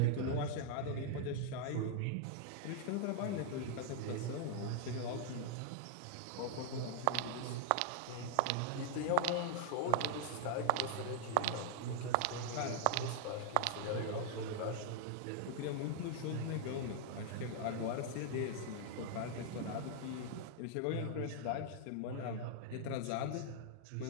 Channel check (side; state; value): both; different; correlation 0.00